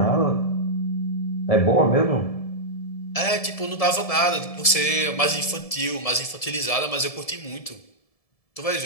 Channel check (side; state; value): right; late; 1.7 ms